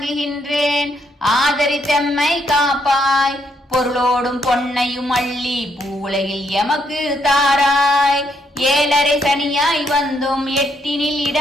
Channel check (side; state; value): both; normal; correlation 0.74